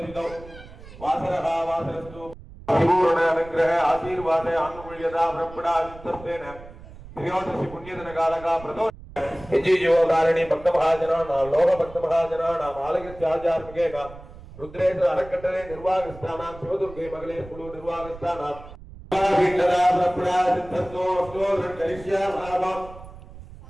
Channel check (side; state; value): right; noise; rumble, 17 dB below the sound